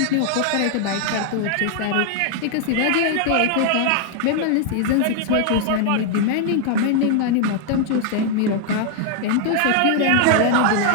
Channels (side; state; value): both; different; correlation 0.00